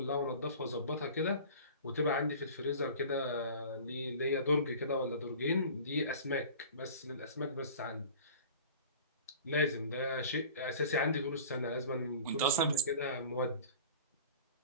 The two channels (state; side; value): inverted; both; correlation -0.42